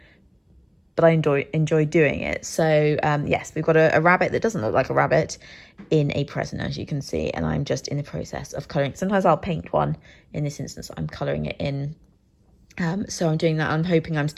but I enjoy doing it. So yes, we've got a rabbit that doesn't look like a rabbit in a present, as you can see, and I'm just in the process of colouring. Sometimes I'll paint one. In this instance, I'm colouring it in. So I'm doing that. I'm hoping I'm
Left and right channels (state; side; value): identical; both; correlation 1.00